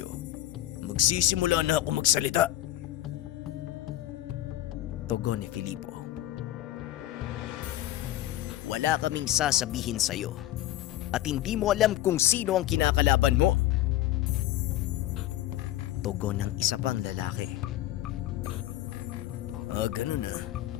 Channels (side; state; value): right; quieter; 14.2 dB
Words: magsisimula na ako magsalita. Tugon ni Filipo. Wala kaming sasabihin sa'yo at hindi mo alam kung sino ang kinakalaban mo. Tugon ng isa pang lalaki. Ganun na.